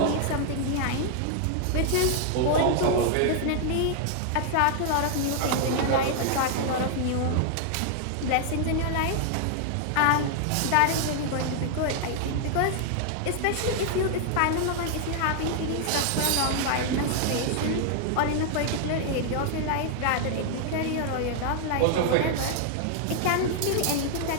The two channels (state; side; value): different; both; correlation 0.00